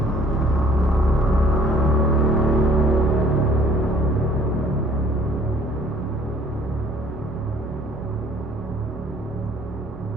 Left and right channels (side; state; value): both; normal; correlation 0.56